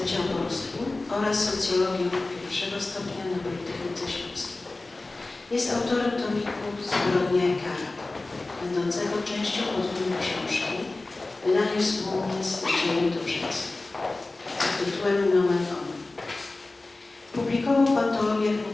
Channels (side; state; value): right; quieter; 3.1 dB